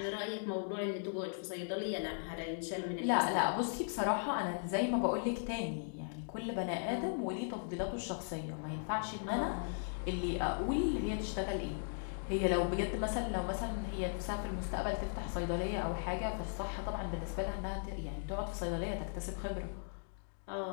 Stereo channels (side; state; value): right; silent; digital silence